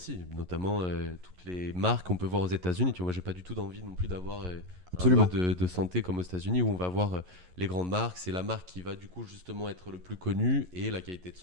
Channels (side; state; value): left; late; 11 ms